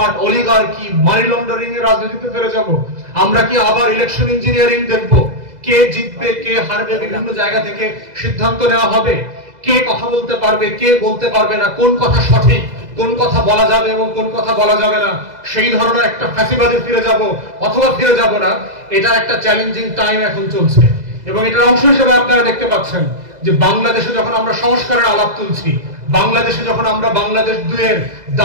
অলিগার্কি, মানি লন্ডারিং এর রাজনীতিতে ফিরে যাব? আমরা কি আবার ইলেকশন ইঞ্জিনিয়ারিং দেখব? কে জিতবে কে হারবে বিভিন্ন জায়গা থেকে সিদ্ধান্ত নেওয়া হবে। কে কথা বলতে পারবে কে বলতে পারবে না, কোন কথা সঠিক, কোন কথা বলা যাবে এবং কোন কথা বলা যাবে না, সেই ধরনের একটা ফ্যাসিবাদে ফিরে যাব অথবা ফিরে যাব না, এটা একটা চ্যালেঞ্জিং টাইম এখন চলছে। এবং এটার অংশ হিসেবে আপনারা দেখতে পাচ্ছেন যে বাংলাদেশে যখন আমরা সংস্কারের আলাপ তুলছি, বাংলাদেশে যখন আমরা বাংলাদেশ 2-এর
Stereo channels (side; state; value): left; late; 2.0 ms